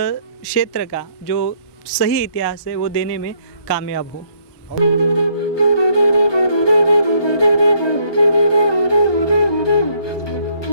का जो सही इतिहास है वो देने में कामयाब हो।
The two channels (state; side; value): late; right; 1.2 ms